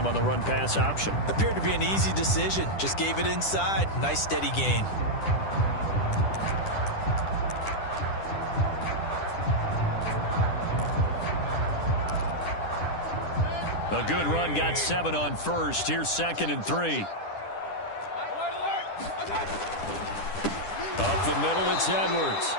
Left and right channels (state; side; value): late; right; 10 ms